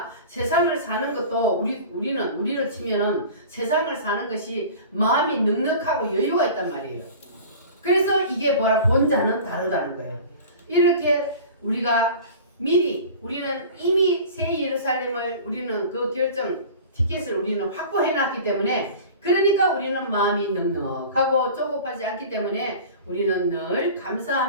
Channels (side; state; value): both; inverted; correlation -0.39